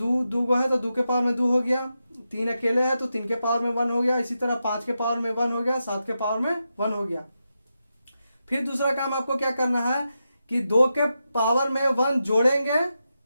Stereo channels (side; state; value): both; inverted; correlation -0.88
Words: है तो 2 के पावर में 2 हो गया, 3 अकेले है तो 3 के पावर में 1 हो गया, इसी तरह 5 के पावर में 1 हो गया, 7 के पावर में 1 हो गया। फिर दूसरा काम आपको क्या करना है कि 2 के पावर में 1 जोड़ेंगे,